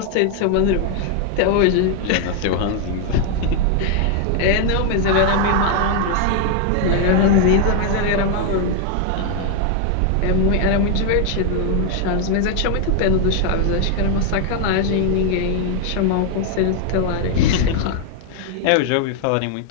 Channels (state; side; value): different; both; correlation 0.00